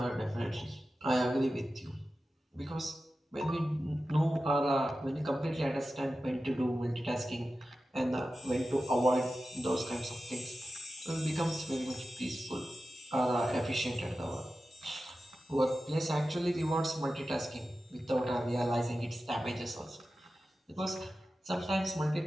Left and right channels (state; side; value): normal; both; correlation 0.93